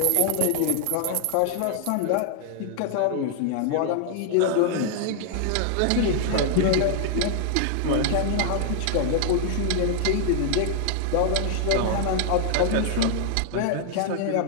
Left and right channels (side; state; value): both; different; correlation 0.00